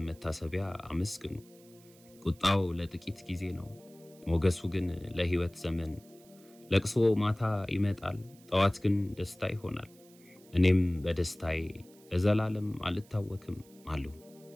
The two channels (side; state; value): right; noise; hiss, 26 dB below the sound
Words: መታሰቢያ አመስግኑ። ቁጣው ለጥቂት ጊዜ ነው፣ ሞገሱ ግን ለሕይወት ዘመን። ለቅሶ ማታ ይመጣል፣ ጠዋት ግን ደስታ ይሆናል። እኔም በደስታዬ ለዘላለም አልታወክም አልሁ።